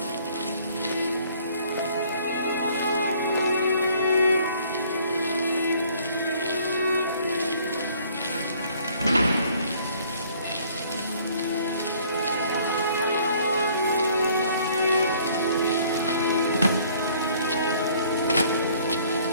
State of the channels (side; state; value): both; inverted; correlation -0.58